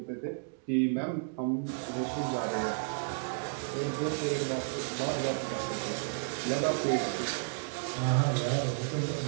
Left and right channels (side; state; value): left; silent; digital silence